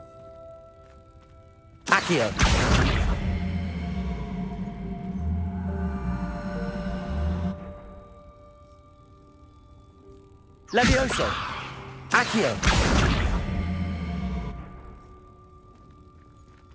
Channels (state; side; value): identical; both; correlation 1.00